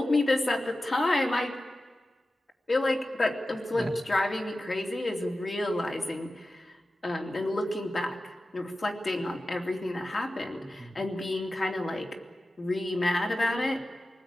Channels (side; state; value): both; normal; correlation 0.94